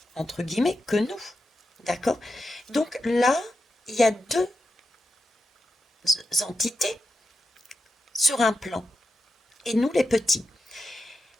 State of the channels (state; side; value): normal; both; correlation 0.87